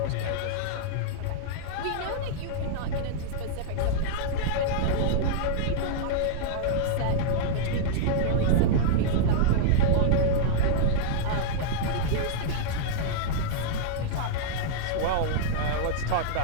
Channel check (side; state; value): both; different; correlation -0.02